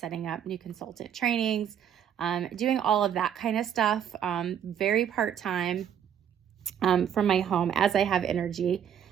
up new consultant trainings, doing all of that kind of stuff, very part-time from my home as I have energy.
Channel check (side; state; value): left; quieter; 9.1 dB